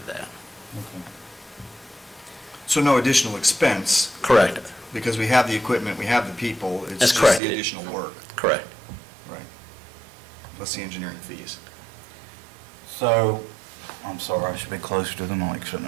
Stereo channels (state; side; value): drops out; left; at 7.4 s